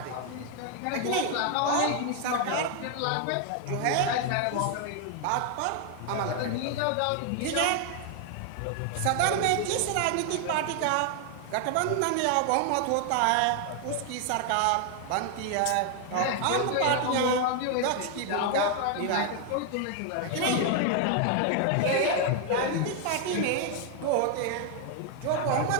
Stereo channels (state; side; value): different; both; correlation 0.00